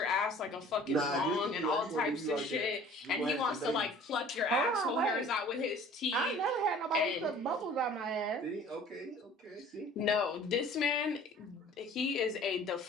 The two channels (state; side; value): normal; both; correlation 0.48